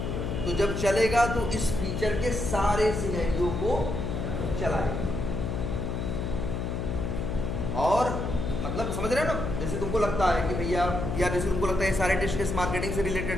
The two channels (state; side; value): noise; left; hum, 2 dB below the sound